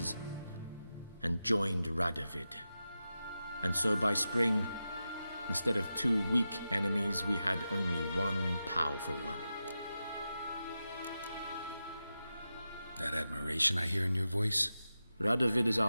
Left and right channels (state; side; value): inverted; both; correlation -0.91